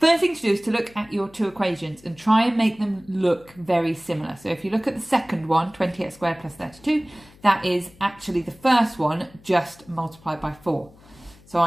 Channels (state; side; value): noise; left; hum, 26 dB below the sound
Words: thing to do is to look at your two equations and try and make them look very similar. So if you look at the second one, 20x squared plus 32, that is actually the first one just multiplied by 4. So